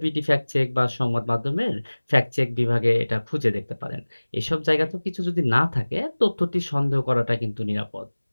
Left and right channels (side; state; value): both; inverted; correlation -1.00